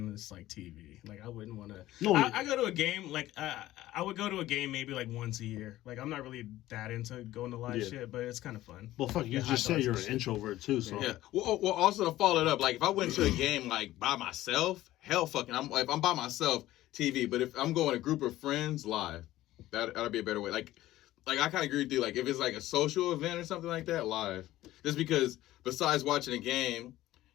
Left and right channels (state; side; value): quieter; right; 15.4 dB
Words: it's, like, TV. Like, I wouldn't want to... No, I go to a game, like, I would go to a game maybe, like, once a year. Like, I'm not really that into going to live Yeah. shit, but it's kind of fun. well, fuck, you Yeah, just hot said dogs you're and an shit. introvert too, so Yeah. Well, also to follow it up, like if I went to a game like by myself, hell fucking, if I'm by myself, TV. But if I'm going with a group of friends, live. That'd be a better way. Like I kind of agree with you. Like if it's like a social event or something like that, live. Just because besides watching a game,